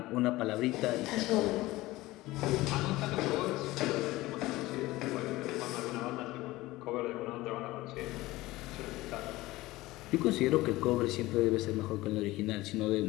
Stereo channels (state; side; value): quieter; right; 18.7 dB